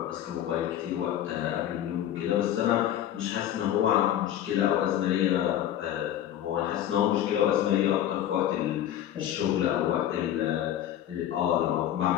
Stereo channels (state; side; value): quieter; right; 11.4 dB